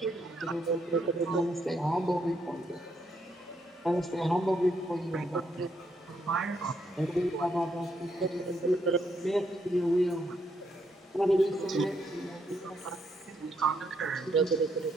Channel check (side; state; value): both; normal; correlation 0.75